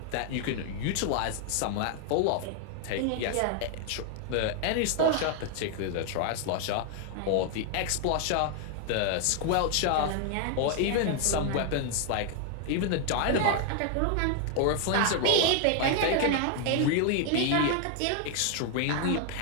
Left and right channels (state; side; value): different; both; correlation 0.00